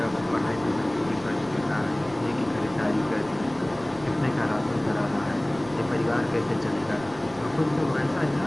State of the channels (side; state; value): right; noise; rumble, 21 dB below the sound